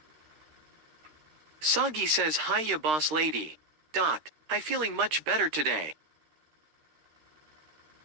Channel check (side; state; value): left; late; 13 ms